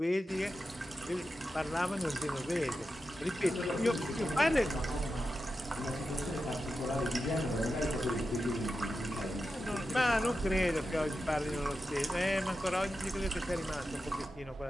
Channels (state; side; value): normal; both; correlation 0.90